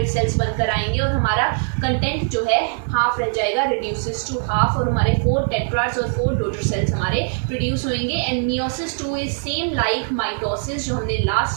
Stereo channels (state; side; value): silent; left; 65 dB below the other